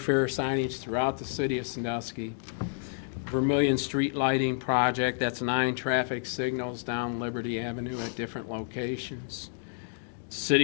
signage throughout the city of Sandusky. Vermillion Street Lighting Project, that's 9 traffic signals down Liberty Avenue at different locations.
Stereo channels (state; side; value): silent; right; digital silence